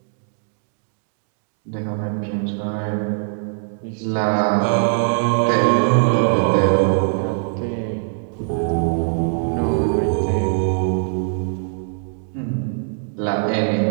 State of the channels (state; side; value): silent; left; digital silence